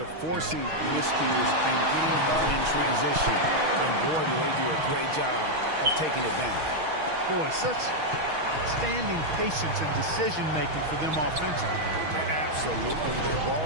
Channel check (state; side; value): late; left; 6.3 ms